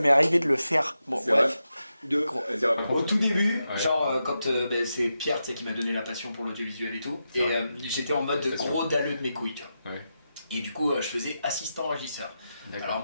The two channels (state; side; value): inverted; both; correlation -0.88